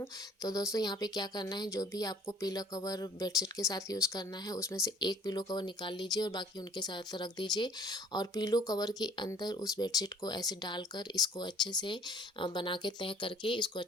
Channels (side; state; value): both; normal; correlation 0.55